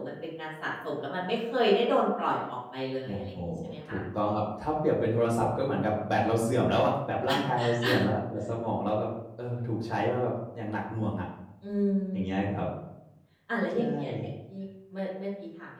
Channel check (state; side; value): identical; both; correlation 1.00